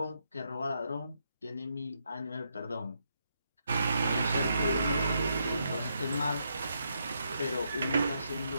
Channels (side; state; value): both; inverted; correlation -0.79